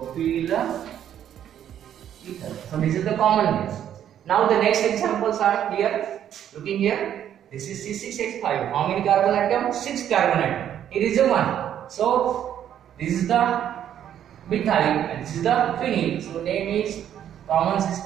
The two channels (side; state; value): left; quieter; 10.2 dB